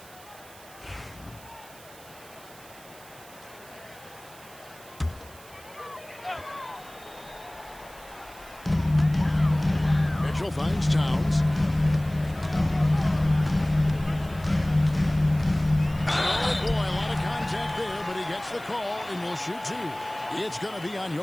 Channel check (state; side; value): noise; right; hiss, 21 dB below the sound